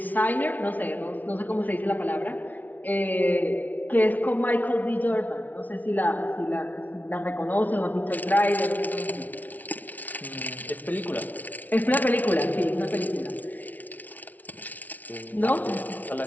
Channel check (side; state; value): right; late; 0.077 ms